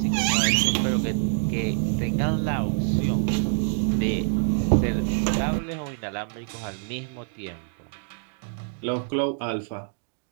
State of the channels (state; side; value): silent; left; digital silence